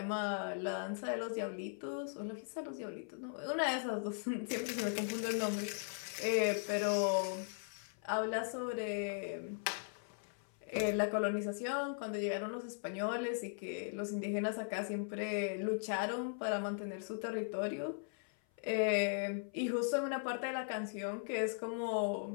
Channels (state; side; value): silent; right; 52 dB below the other